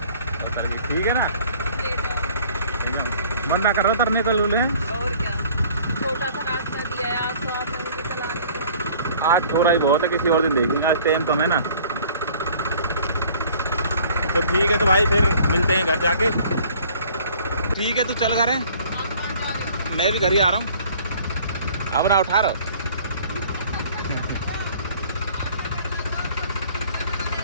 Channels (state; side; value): inverted; both; correlation -0.53